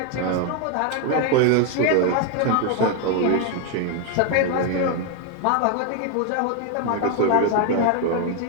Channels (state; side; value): different; both; correlation 0.01